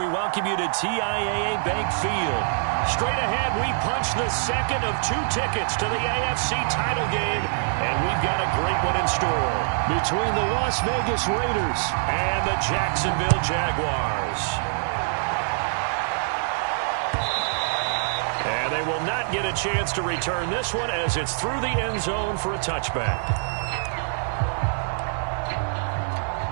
welcome you to TIAA Bank Field. Straight ahead, we punch the second of 2 tickets to the AFC title game, and we've got a great one in store between the Las Vegas Raiders and the Jacksonville Jaguars. And they will not get a chance to return this one as it's through the end zone for a touchback.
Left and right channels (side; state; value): left; silent; digital silence